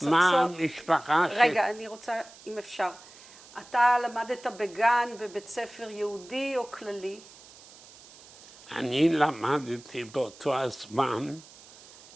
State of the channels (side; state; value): right; noise; hiss, 21 dB below the sound